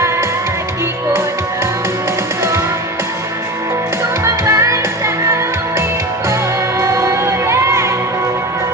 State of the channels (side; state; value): both; normal; correlation 0.28